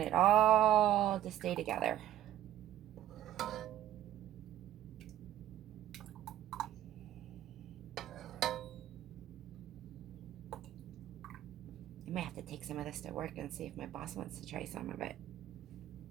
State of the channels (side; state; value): left; quieter; 12.5 dB